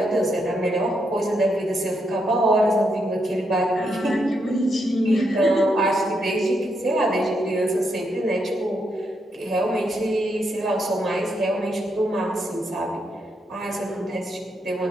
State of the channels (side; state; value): both; normal; correlation 0.79